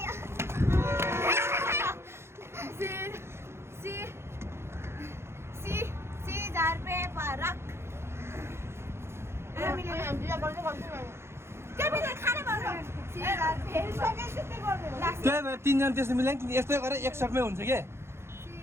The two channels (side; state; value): left; late; 0.12 ms